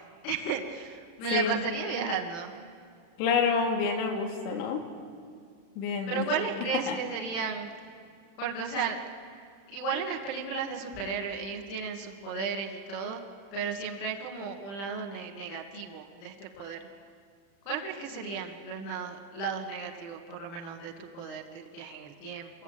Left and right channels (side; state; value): right; late; 36 ms